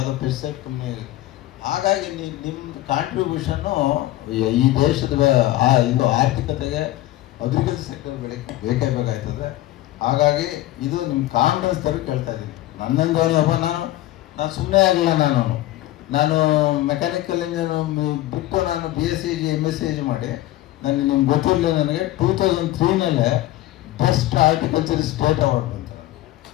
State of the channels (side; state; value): right; quieter; 15.9 dB